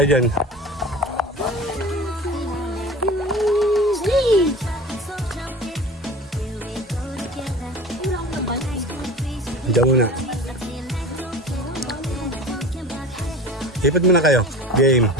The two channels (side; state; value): both; normal; correlation 0.36